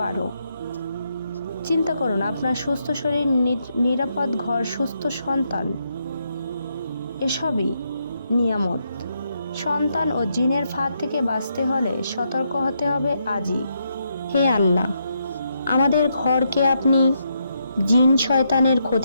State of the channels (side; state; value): both; inverted; correlation -0.79